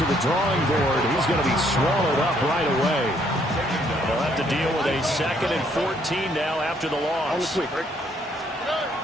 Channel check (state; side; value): normal; both; correlation 0.68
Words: the drawing board. He's going to be swallowed up right away. They'll have to deal with a 2nd and 14 now after the loss.